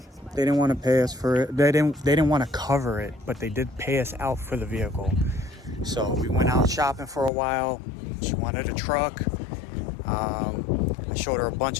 they didn't want to pay us for it. They didn't want to cover it, but they did pay us out for the vehicle. So we went out shopping for a while. She wanted a truck. I showed her a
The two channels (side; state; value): right; drops out; at 7.3 s